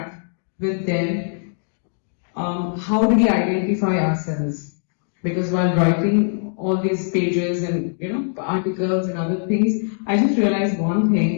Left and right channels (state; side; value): silent; right; digital silence